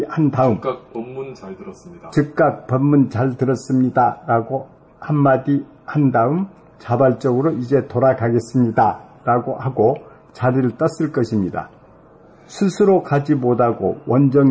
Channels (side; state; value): both; identical; correlation 1.00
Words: 한 다음 즉각 법문 잘 들었습니다. 즉각 법문 잘 들었습니다 라고 한마디 한 다음 자발적으로 이제 돌아가겠습니다 라고 하고 자리를 떴을 것입니다. 스스로 가지 못하고